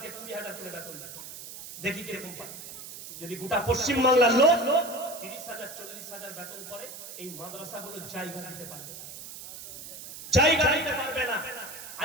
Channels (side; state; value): right; noise; hiss, 12 dB below the sound